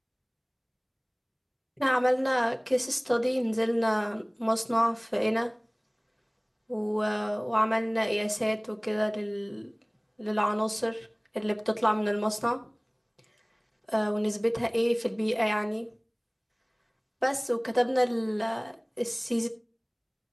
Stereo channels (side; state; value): both; identical; correlation 1.00